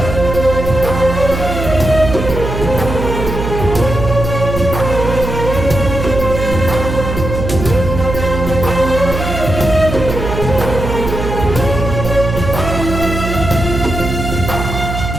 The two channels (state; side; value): noise; right; hum, 4 dB below the sound